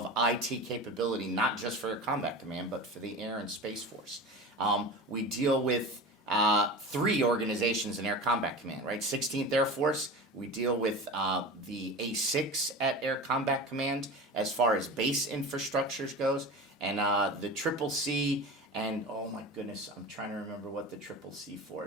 IT capability, not just for Air Combat Command, but for the Air and Space Force. We deal with 3 organizations in Air Combat Command, right? 16th Air Force, we deal with the A6 at Air Combat Command as far as base infrastructures goes, and the Triple C, and oh my goodness, I'm trying to remember what the Triple C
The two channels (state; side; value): normal; both; correlation 0.31